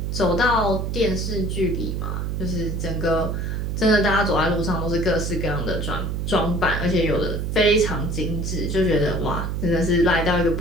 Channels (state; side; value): noise; right; hum, 2 dB below the sound